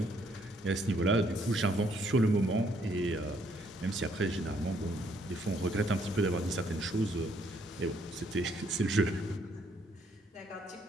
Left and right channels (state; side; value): normal; both; correlation 0.69